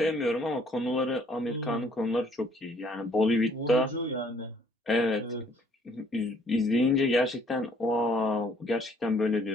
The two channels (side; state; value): both; normal; correlation 0.62